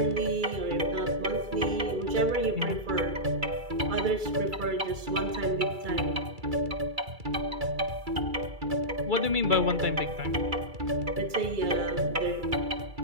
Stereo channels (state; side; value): late; left; 2.3 ms